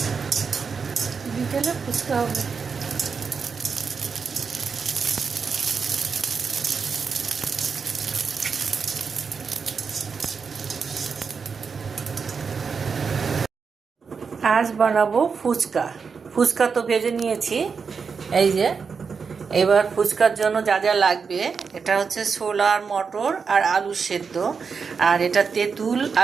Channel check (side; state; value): left; quieter; 5.6 dB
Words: বিকেলে ফুচকা হবে। আজ বানাবো ফুচকা। ফুচকা তো ভেজে নিয়েছি, এই যে। এবার ফুচকার জন্য যা যা লাগবে, এটা হচ্ছে ছোলা আর মটর আর আলু সেদ্ধ, আর এটা তেঁতুল